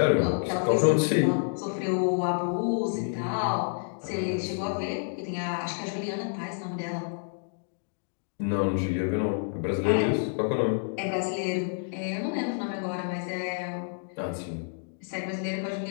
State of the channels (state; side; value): silent; right; digital silence